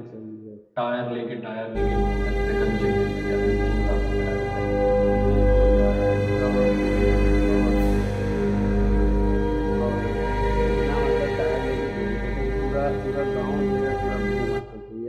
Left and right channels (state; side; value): identical; both; correlation 1.00